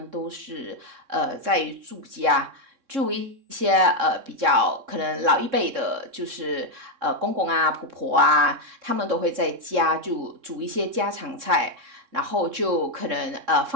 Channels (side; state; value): left; late; 3.6 ms